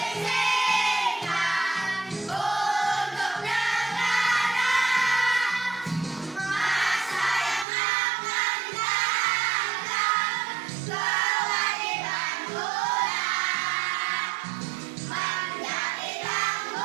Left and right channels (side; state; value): left; drops out; at 7.7 s